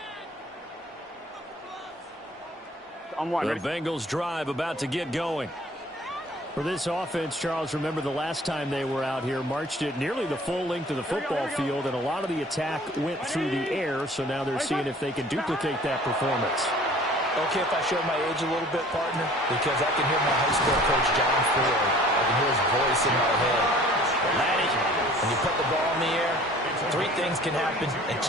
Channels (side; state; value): both; normal; correlation 0.50